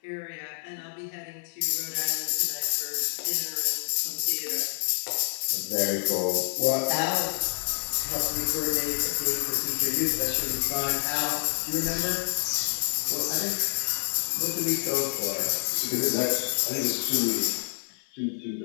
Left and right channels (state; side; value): silent; right; 55 dB below the other